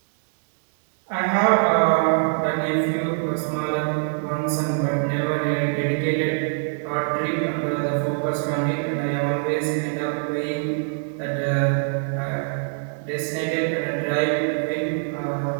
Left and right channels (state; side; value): silent; left; digital silence